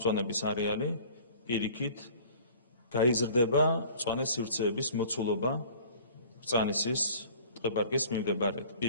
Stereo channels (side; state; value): both; inverted; correlation -0.48